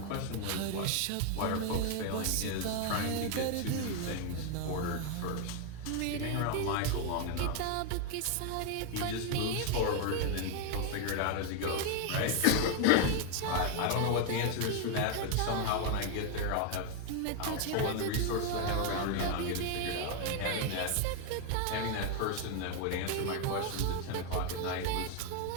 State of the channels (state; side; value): different; both; correlation 0.01